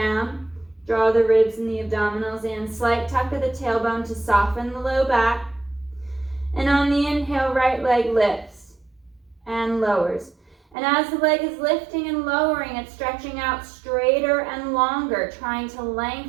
Draw the ribs and the abdominals in. Slight tuck of the tailbone to soften the low back. And on the inhale, right leg lifts and lowers. And as the leg is lifting and lowering, it's stretching out straighter and longer, trying to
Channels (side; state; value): left; drops out; at 10.8 s